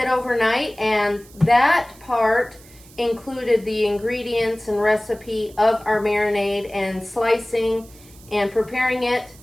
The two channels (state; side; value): noise; right; hiss, 24 dB below the sound